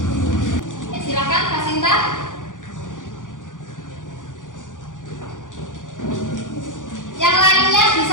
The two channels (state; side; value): late; right; 0.88 ms